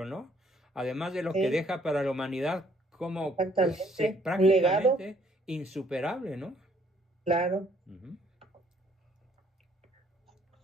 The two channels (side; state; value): both; normal; correlation 0.64